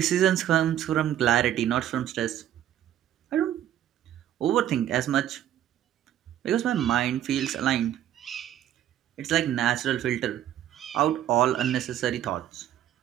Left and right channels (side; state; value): left; quieter; 11.5 dB